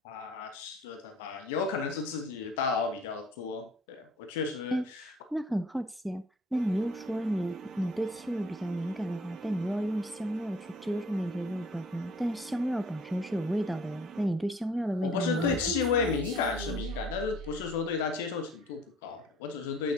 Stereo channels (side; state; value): both; normal; correlation 0.54